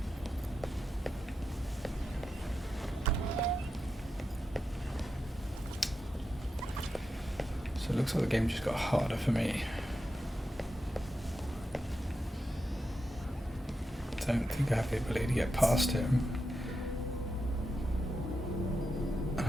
So it looks like the game just got harder for me. Don't think I have the ability to get past him.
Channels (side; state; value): both; normal; correlation 0.88